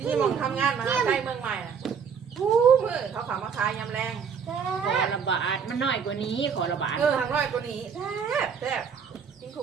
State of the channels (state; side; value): quieter; left; 6.6 dB